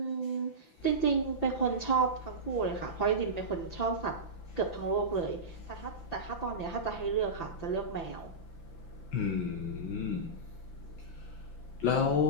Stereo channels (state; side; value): late; right; 5.9 ms